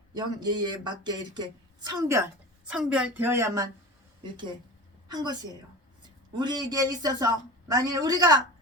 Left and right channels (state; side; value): normal; both; correlation 0.32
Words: 맞게 이렇게 성별되어야만 이렇게 한 것이에요. 우리에게 있어서 만일 우리가